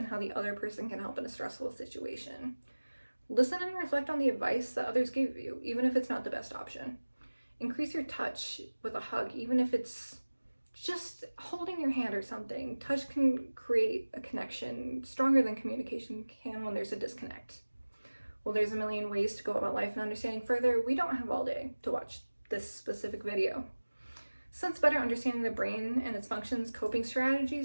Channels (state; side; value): inverted; both; correlation -1.00